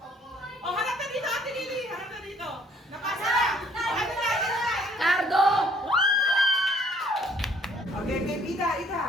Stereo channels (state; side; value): normal; both; correlation 0.61